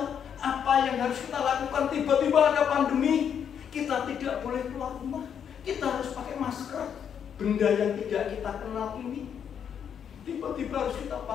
apa yang harus kita lakukan. Tiba-tiba ada pandemi, kita tidak boleh keluar rumah. Kita harus pakai masker. Benda yang tidak kita kenal ini tiba-tiba harus kita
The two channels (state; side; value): quieter; right; 8.1 dB